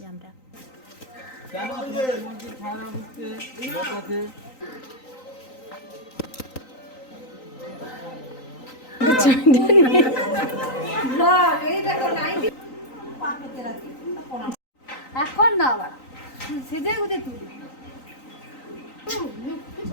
আমরা। এখন না আবার সেজে গুজে তুলি।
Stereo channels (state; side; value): late; right; 3.9 ms